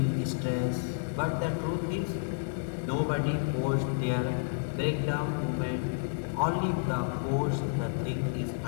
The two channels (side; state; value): right; silent; 57 dB below the other